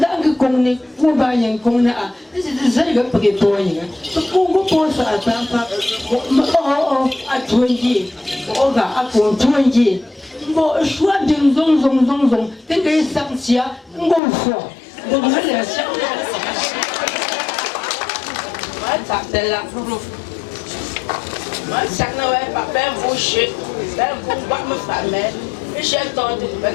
que qu'on est, ou bien qu'on a, c'est ça le prétoyen. Pourquoi pour ça, à 20, à 20. Bon, choix d'une zone, t'es que ça, bon fort. Donc, là. Moi, ça n'a pas fait boucher, faire me faire, et j'ai tenté de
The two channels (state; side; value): drops out; right; at 14.2 s